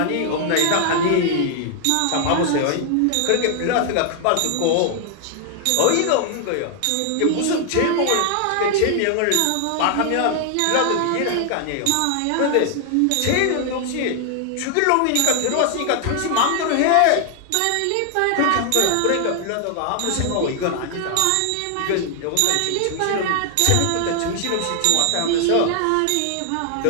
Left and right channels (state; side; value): different; both; correlation 0.00